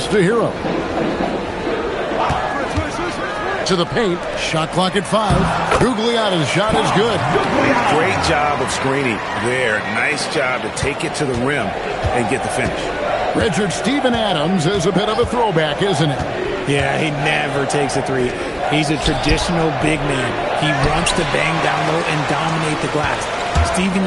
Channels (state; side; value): identical; both; correlation 1.00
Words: to Hero. To the paint. Shot clock at 5. Gugliotta's shot is good. Great job of screening there. Nice job to take it to the rim and get the finish. Richard Steven Adams is a bit of a throwback, isn't it? Yeah, he never takes a 3. He's a traditional big man. He wants to bang down low and dominate the glass. Steven